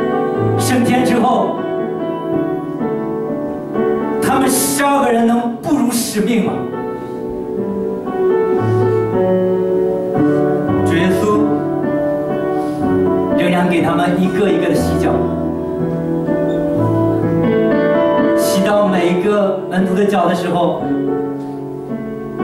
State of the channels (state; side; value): identical; both; correlation 1.00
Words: 升天之后，他们12个人能不辱使命吗？主耶稣仍然给他们一个一个的洗脚，洗到每一个门徒的脚的时候，